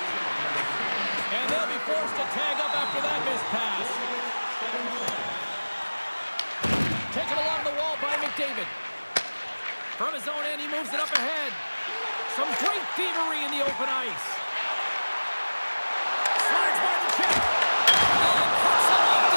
And they'll be forced to tag up after that missed pass. Taken along the wall by McDavid. From his own end, he moves it up ahead. Some great thievery in the open ice. Slides by the check. And puts it off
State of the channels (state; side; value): inverted; both; correlation -1.00